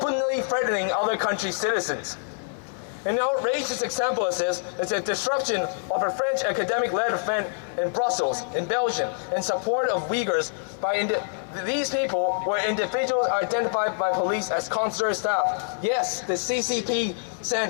threatening other countries' citizens. An outrageous example of this is the disruption of a French academic-led event in Brussels, in Belgium, in support of Uyghurs by these people were individuals identified by police as consular staff. Yes, the CCP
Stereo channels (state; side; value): silent; right; 61 dB below the other